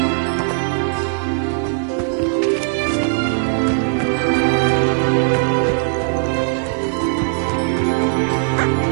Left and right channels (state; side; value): silent; left; 67 dB below the other